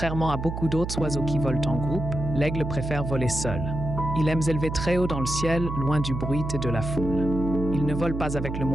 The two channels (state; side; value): noise; right; hum, 5 dB below the sound